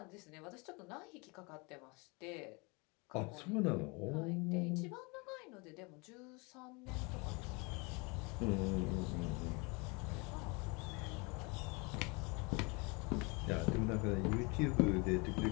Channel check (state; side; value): quieter; right; 29.1 dB